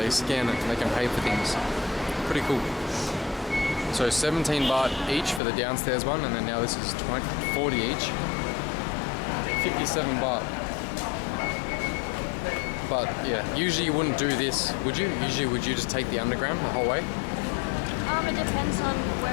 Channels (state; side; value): drops out; right; at 5.4 s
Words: scan it and they can pay for things. Pretty cool. So 17 baht each for the downstairs one, and then now this is 40 each. 57 baht. But yeah, usually you wouldn't do this, would you? Usually would you just take the underground the whole way? It depends on